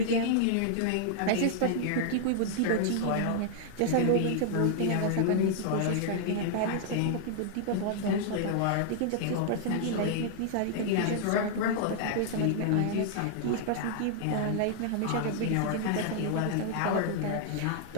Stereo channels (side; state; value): both; different; correlation -0.01